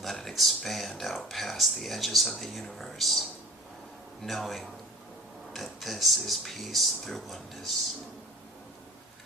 let it expand out past the edges of the universe, knowing that this is peace through oneness.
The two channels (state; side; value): normal; both; correlation 0.41